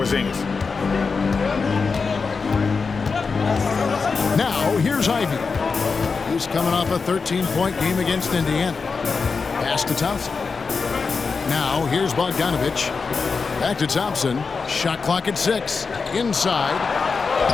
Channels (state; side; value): quieter; right; 4.9 dB